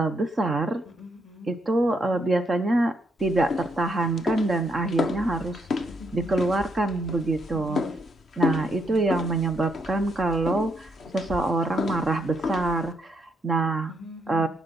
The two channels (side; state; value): both; normal; correlation 0.76